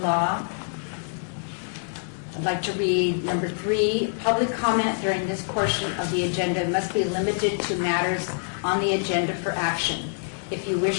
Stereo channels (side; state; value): right; silent; digital silence